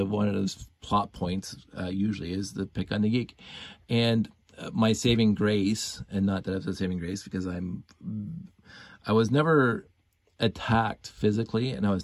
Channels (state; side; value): identical; both; correlation 1.00